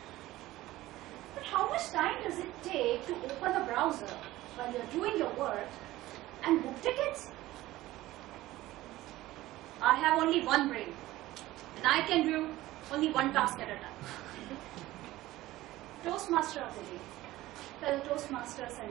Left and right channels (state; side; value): quieter; left; 16.7 dB